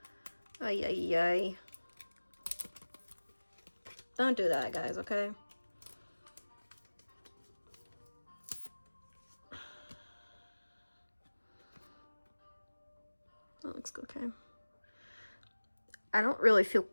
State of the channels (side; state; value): both; inverted; correlation -1.00